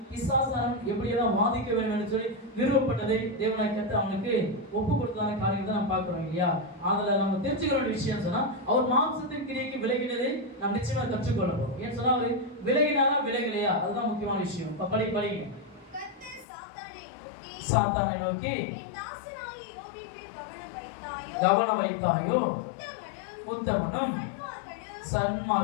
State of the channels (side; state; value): right; drops out; at 16.4 s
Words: பிசாசானம் எப்படியெல்லாம் வாதிக்க வேண்டும் என்று சொல்லி நிறுவப்பட்டதை தேவனை கற்று அவனுக்கு ஒப்பு கொடுத்ததான காரியங்கள் தான் நம்ம பார்க்கிறோம் இல்லையா? அதில் நம்ம தெரிஞ்சுக்கிற ஒரு விஷயம் சொன்னா அவர் மாம்சத்தின் கிரியைக்கு விலகினதை நாம் நிச்சயமா கற்றுக்கொள்ளணும். ஏன்னு சொன்னா அவர் விலகினாரா விலகலையா, அதுதான் முக்கியமான விஷயம். இப்ப படிங்க. சாத்தானை நோக்கி கவனம் வைத்தாயோ, உத்தமனும்